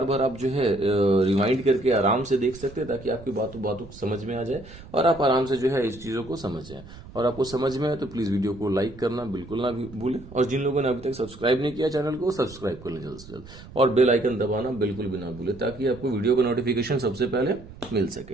बार आप जो है रिवाइंड करके आराम से देख सकते हैं, ताकि आपकी बातों बातों समझ में आ जाए और आप आराम से जो है इस चीजों को समझ जाए। और आपको समझ में आए तो प्लीज वीडियो को लाइक करना बिल्कुल ना भूलें, और जिन लोगों ने अभी तक सब्सक्राइब नहीं किया चैनल को, सब्सक्राइब कर लें जल्द से जल्द, और बेल आइकन दबाना बिल्कुल भी ना भूलें, ताकि आपको वीडियो का नोटिफिकेशन सबसे पहले मिल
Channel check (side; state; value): right; noise; rumble, 18 dB below the sound